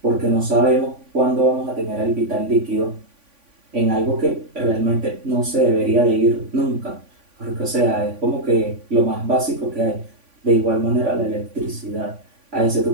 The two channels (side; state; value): left; late; 3.5 ms